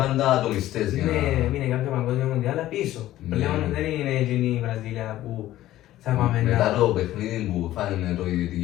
πάντα ατομιστές για να... Έμεινε κάποια παγκόσμια μοντιάλα πίσω. Πλέον δεν είναι εκείνη η Βραζιλία που θα πάμε να... Μετά το παιχνίδι που φάνε το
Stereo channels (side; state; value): right; quieter; 14.4 dB